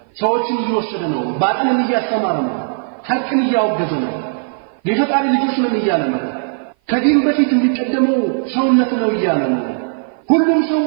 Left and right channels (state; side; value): silent; left; 55 dB below the other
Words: ሰዎችን እየወሰደ ነው፣ ባጥልን እያስተማረ ነው፣ ሐቅን እያወገዘ ነው፣ የፈጣሪ ልጆች ነን እያለ ነው፣ ከዲን በፊት የሚቀደመው ሰውነት ነው እያለ ነው፣ ሁሉም ሰው